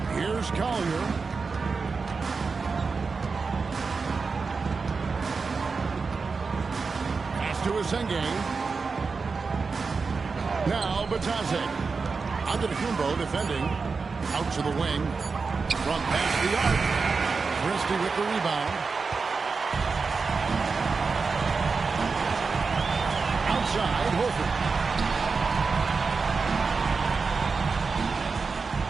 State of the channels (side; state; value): left; quieter; 4.7 dB